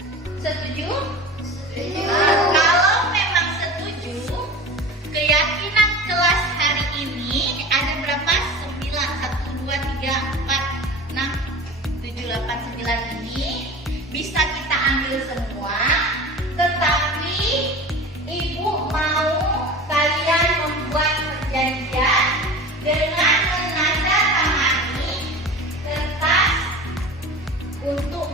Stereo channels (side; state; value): both; normal; correlation 0.35